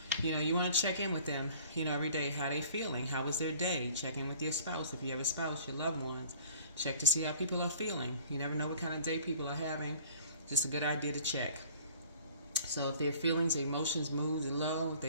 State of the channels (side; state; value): both; inverted; correlation -0.51